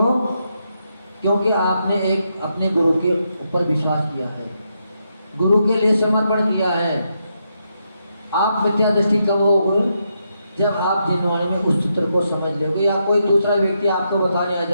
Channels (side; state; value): both; inverted; correlation -0.81